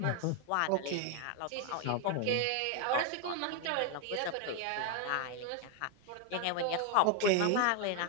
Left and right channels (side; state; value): both; different; correlation 0.01